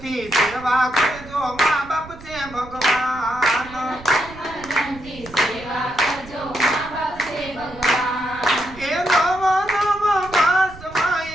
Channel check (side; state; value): right; noise; rumble, 17 dB below the sound